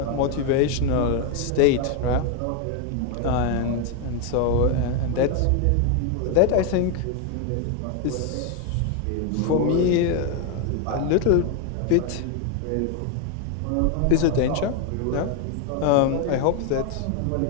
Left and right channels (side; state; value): both; different; correlation 0.01